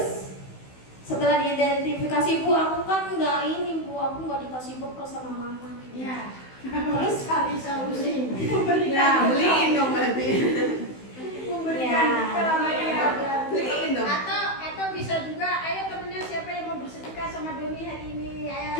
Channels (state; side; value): late; right; 16 ms